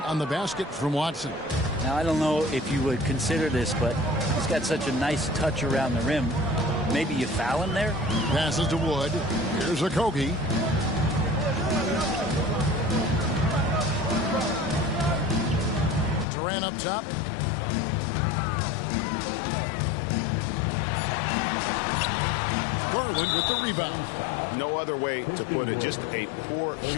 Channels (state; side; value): drops out; right; at 16.2 s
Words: on the basket from Watson. Now, I don't know if you would consider this, but he's got such a nice touch around the rim. Maybe you foul him there? Passes to Wood. Here's Okogie. Durant up top. Garland with the rebound. No other way to put it. Just a poor